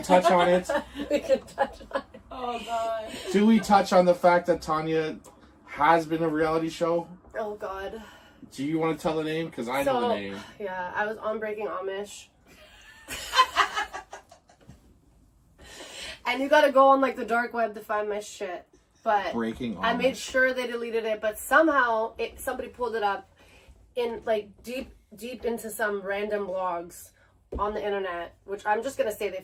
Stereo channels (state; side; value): identical; both; correlation 1.00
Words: touch on it? We can touch on it. Oh God. Do we touch on the fact that Tawnya has been a reality show? Oh God. Do you want to tell the name? Because I know the name. Yeah, I was on Breaking Amish. And you gotta go on like the dark web to find my shit. But Breaking Amish. I made sure they deleted it, but somehow somebody pulled it up in like deep into some random blogs on the internet, which I'm just gonna say they